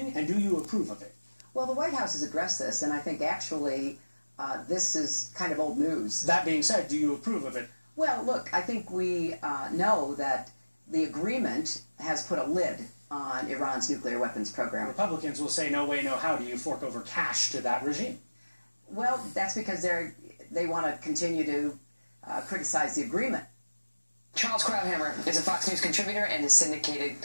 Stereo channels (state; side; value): inverted; both; correlation -1.00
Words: and do you approve of it? Well, the White House has addressed this, and I think actually this is kind of old news. That being said, do you approve of it? Well, look, I think we know that the agreement has put a lid on Iran's nuclear weapons program. Republicans will say, no way, no how do you fork over cash to that regime? Well, that's because they want to continue to criticize the agreement. Charles Krauthammer is a Fox News contributor and a syndicated